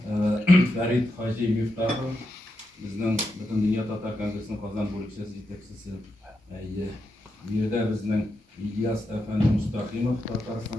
Ferit Hacı Miftahı, bizden bütün Dünya Tatar Kongresi'nin Kazan bölükçesi yetekçisi. Biri de bizden İlyas Efendi Mustaqimov, Tataristan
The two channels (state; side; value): normal; both; correlation 0.85